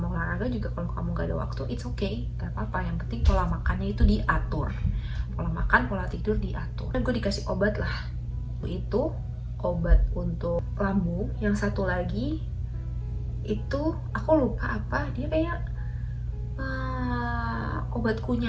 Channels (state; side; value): identical; both; correlation 1.00